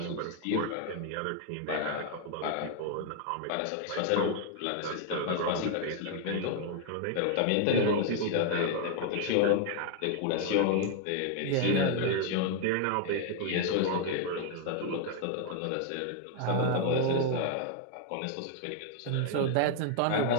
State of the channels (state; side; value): different; both; correlation 0.00